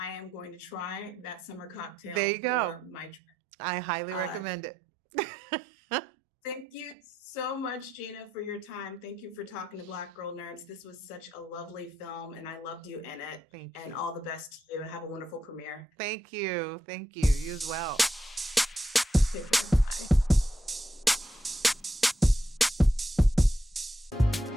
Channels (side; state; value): both; normal; correlation 0.82